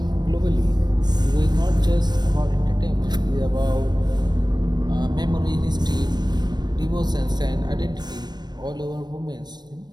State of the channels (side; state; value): left; late; 0.20 ms